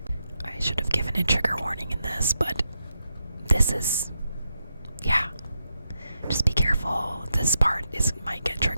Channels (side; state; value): both; inverted; correlation -0.85